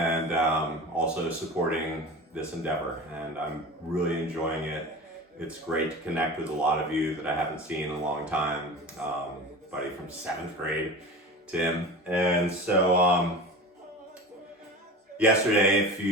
also supporting this endeavor. And I'm really enjoying it. It's great to connect with a lot of you that I haven't seen in a long time. Buddy from 7th grade, Tim. And so yesterday, if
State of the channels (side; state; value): both; normal; correlation 0.33